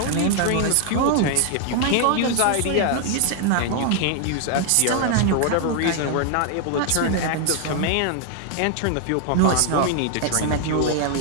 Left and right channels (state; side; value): different; both; correlation 0.00